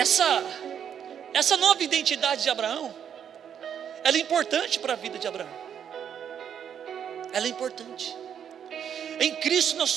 nova identidade de Abraão, ela é importante para a vida de Abraão. Ela é importante. Em Cristo nós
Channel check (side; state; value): left; quieter; 8.6 dB